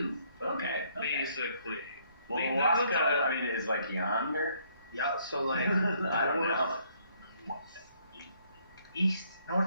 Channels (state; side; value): inverted; both; correlation -0.67